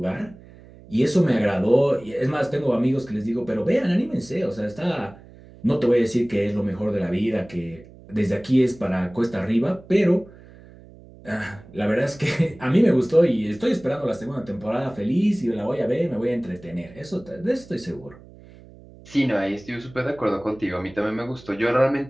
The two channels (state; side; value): noise; right; hum, 21 dB below the sound